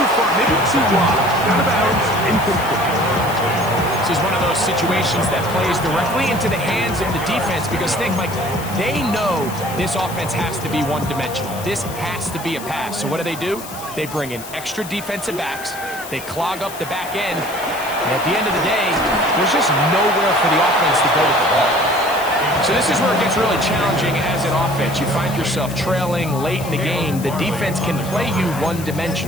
far, maybe too wide. Out of bounds, incomplete. This is one of those situations that plays directly into the hands of the defense because, Mike, they know this offense has to be one-dimensional. This has to be a pass. So what do? They bring in extra defensive backs. They clog up the back end. And at the end of the day, there's just nowhere for the offense to go with the ball. So this is where it gets really challenging as an offense. You find yourself trailing late in the game. The defense can play you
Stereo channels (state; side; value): noise; left; hiss, 14 dB below the sound